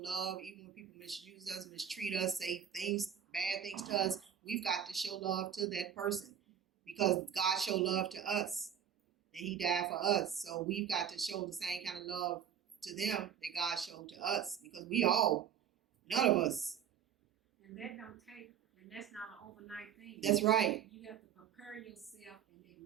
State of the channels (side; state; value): left; quieter; 8.7 dB